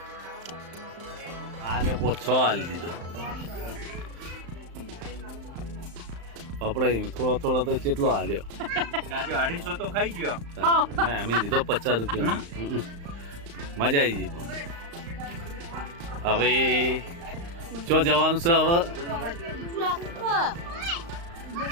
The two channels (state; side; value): late; left; 35 ms